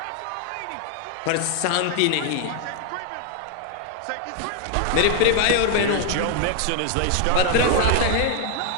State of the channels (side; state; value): both; different; correlation 0.00